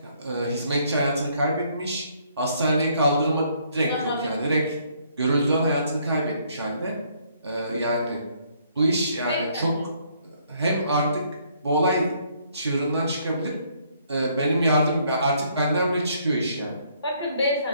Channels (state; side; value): inverted; both; correlation -0.67